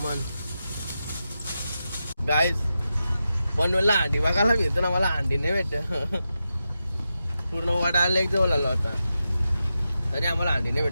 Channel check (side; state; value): both; inverted; correlation -0.89